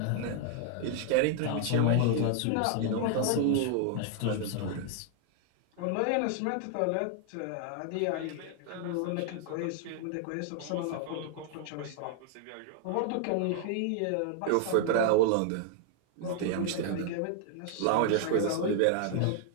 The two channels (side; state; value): both; different; correlation 0.00